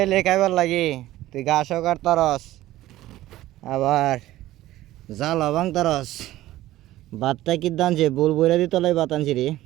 এলে খাইবার লাগি তুই ঘাসও কাটতারস আবার জাল ভাঙতারস ভাতটা কি দানছে বল বইরা দিত লাই ভাত আনছি রে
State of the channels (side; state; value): left; quieter; 15.4 dB